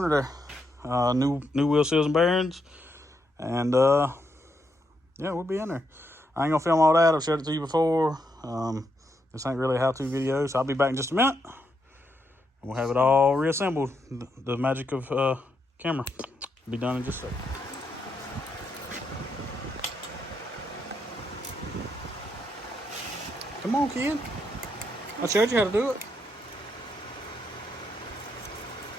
there. New wheel seals and bearings, and yeah, we'll be in there. I ain't gonna film all that. I've showed it to you before. This ain't really a how-to video, so I'll be back in just a minute. We'll have it all reassembled. The magic of camera will be done in just a second. Come on, kid. I showed you how to do it.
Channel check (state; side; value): normal; both; correlation 0.80